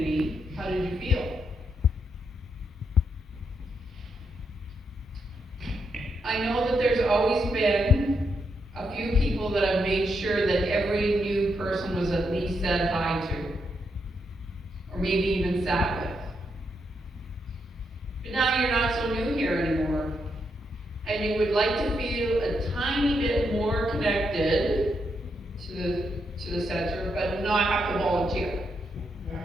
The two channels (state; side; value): normal; both; correlation 0.80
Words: how did you feel? I know that there's always been a few people that have made sure that every new person was at least said hi to, or maybe even sat with. But now you're not so new here anymore, and you would like to feel a tiny bit more connected to the center, but not have to volunteer.